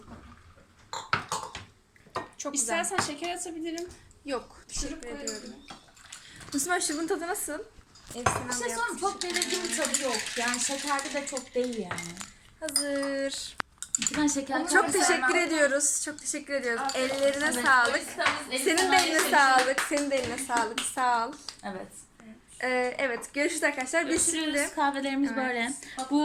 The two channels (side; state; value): both; identical; correlation 1.00